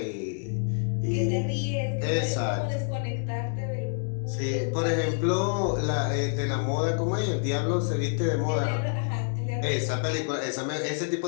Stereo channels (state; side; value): silent; right; digital silence